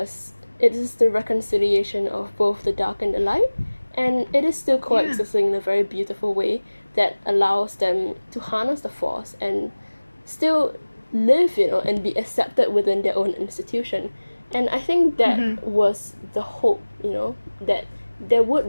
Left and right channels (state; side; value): inverted; both; correlation -1.00